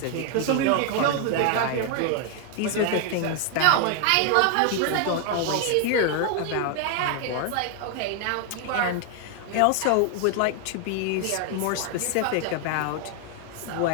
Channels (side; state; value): both; different; correlation 0.00